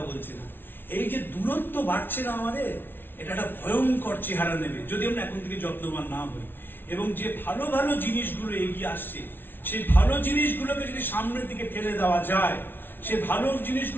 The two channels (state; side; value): late; right; 0.10 ms